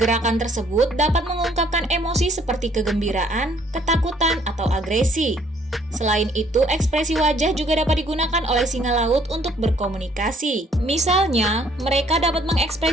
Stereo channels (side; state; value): both; normal; correlation 0.63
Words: tersebut dapat mengungkapkan emosi seperti kegembiraan, ketakutan, atau agresi. Selain itu, ekspresi wajah juga dapat digunakan oleh singa laut untuk berkomunikasi. Misalnya, mereka dapat